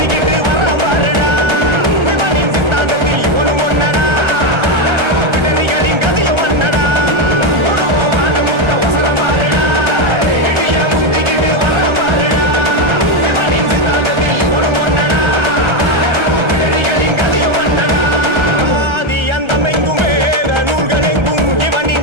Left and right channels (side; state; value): left; late; 1.3 ms